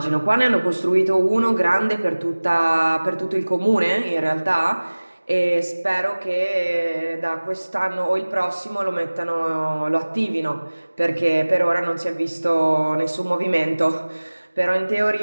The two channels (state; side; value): inverted; both; correlation -1.00